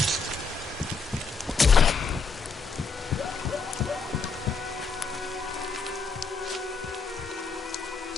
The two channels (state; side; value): quieter; right; 4.6 dB